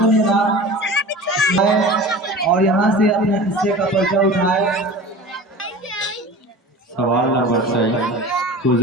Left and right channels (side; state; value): both; normal; correlation 0.37